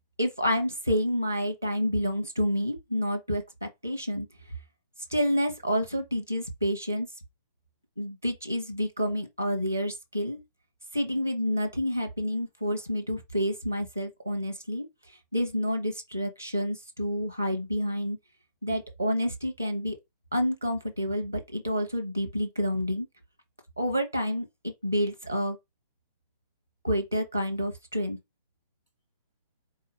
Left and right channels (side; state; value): both; inverted; correlation -0.84